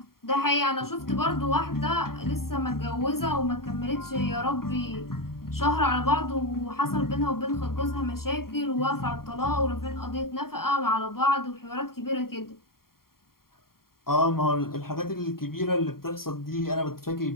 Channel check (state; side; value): late; right; 0.93 ms